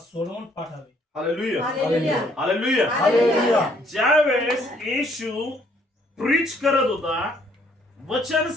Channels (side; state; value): both; normal; correlation 0.65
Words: पाठावे. Hallelujah, hallelujah, hallelujah. ज्यावेळेस येशू प्रीच करत होता, वचन